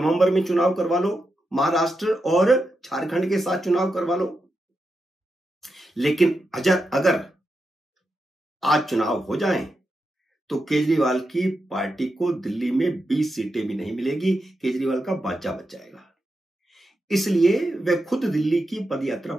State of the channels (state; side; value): normal; both; correlation 0.87